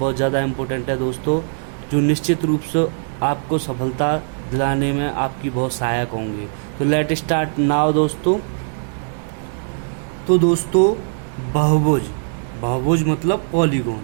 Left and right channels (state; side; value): silent; left; digital silence